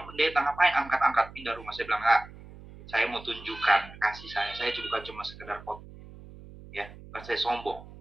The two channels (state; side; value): noise; right; hum, 17 dB below the sound